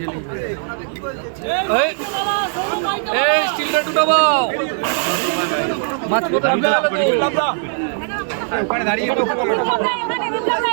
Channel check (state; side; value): silent; left; 59 dB below the other